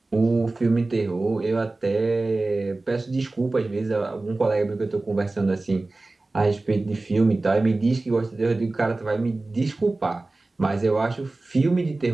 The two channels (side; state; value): left; quieter; 3.2 dB